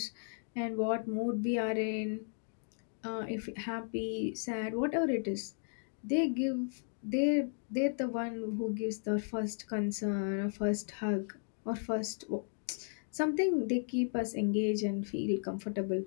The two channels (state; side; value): silent; right; digital silence